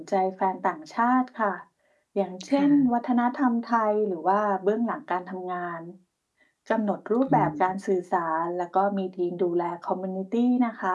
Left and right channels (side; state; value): both; identical; correlation 1.00